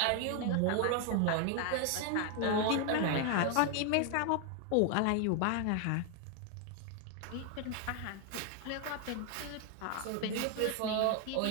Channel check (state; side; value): different; both; correlation 0.00